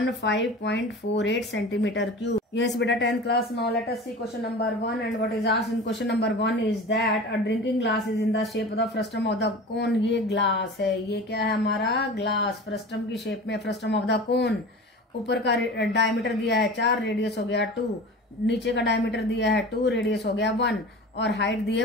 centimetre cube. Yes, beta, 10th class. Now let us see question number 1, and what is asked in question number 1 is that a drinking glass is in the shape of the frustum of the cone. ये glass है, ये क्या है हमारा glass, frustum की shape में, frustum of the कोन। ऊपर का डायमीटर दिया है 4, रेडियस हो गया 2, नीचे का डायमीटर दिया है 2, रेडियस हो गया 1, और हाइट दी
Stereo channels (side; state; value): both; normal; correlation 0.35